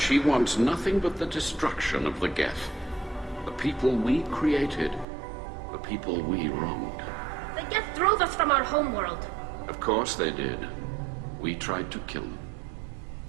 wants nothing but the destruction of the Geth. The people we created. The people we wronged. The Geth drove us from our homeworld. Of course they did. We tried to kill them.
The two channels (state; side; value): drops out; left; at 5.1 s